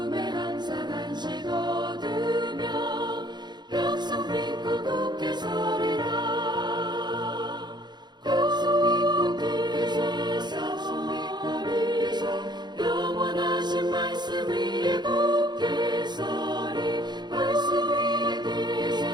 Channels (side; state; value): left; late; 0.21 ms